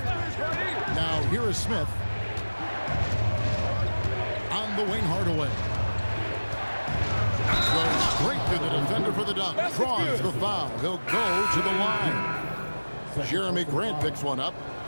Now here is Smith. On the wing, Hardaway. Goes straight through the defender for the dunk. Draws the foul. He'll go to the line. Jeremy Grant picks one up.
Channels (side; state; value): both; inverted; correlation -1.00